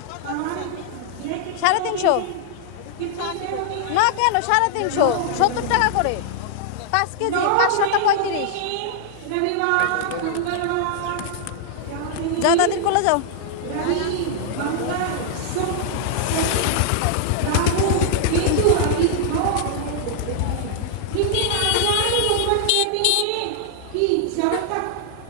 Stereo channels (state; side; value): different; both; correlation -0.01